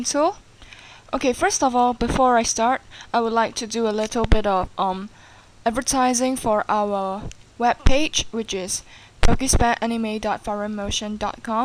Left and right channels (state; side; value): identical; both; correlation 1.00